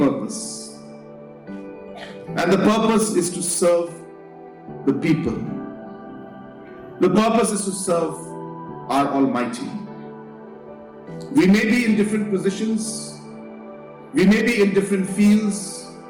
And the purpose is to serve the people. The purpose is to serve our Almighty. We may be in different positions. We may be in different fields.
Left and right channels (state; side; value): identical; both; correlation 1.00